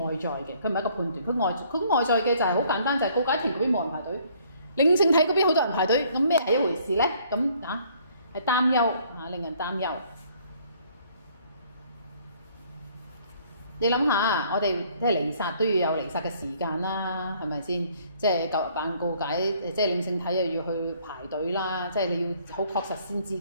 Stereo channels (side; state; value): both; inverted; correlation -0.61